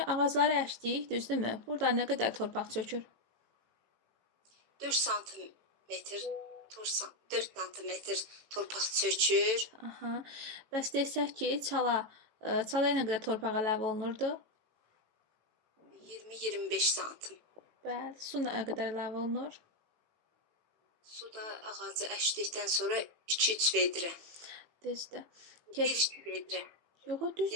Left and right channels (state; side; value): late; left; 18 ms